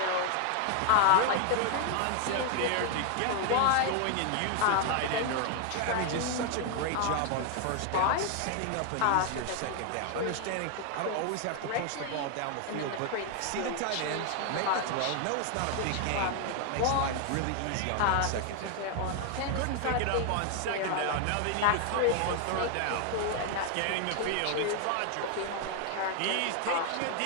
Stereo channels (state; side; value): different; both; correlation 0.00